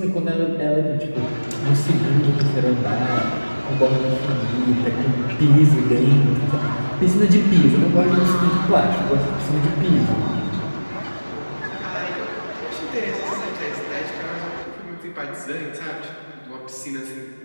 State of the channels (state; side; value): inverted; both; correlation -1.00